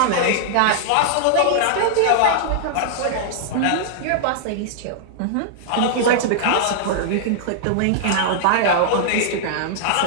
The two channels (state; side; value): different; both; correlation -0.01